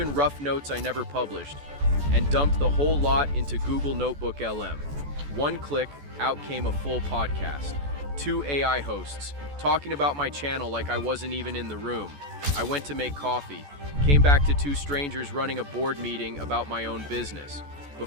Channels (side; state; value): left; late; 14 ms